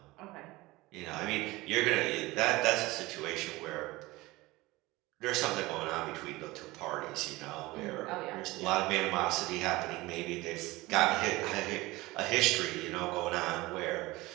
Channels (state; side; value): quieter; left; 20.5 dB